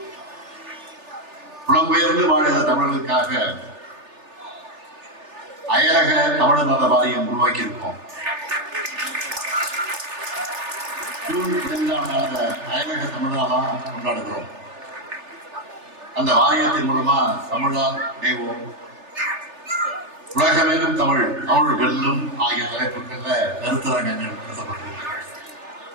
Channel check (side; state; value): left; late; 3.3 ms